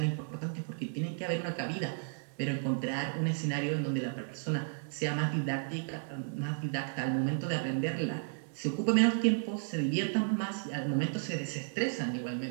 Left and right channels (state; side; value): silent; left; digital silence